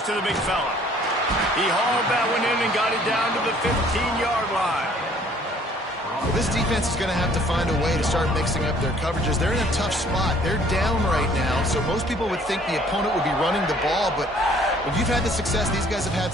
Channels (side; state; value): both; normal; correlation 0.58